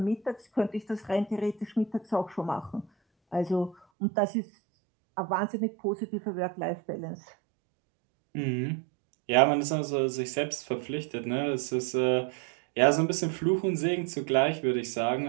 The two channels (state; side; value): drops out; left; at 3.8 s